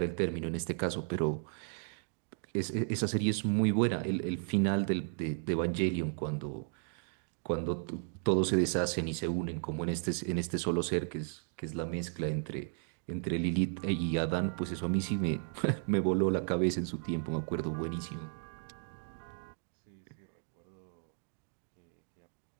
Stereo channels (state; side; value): silent; left; 55 dB below the other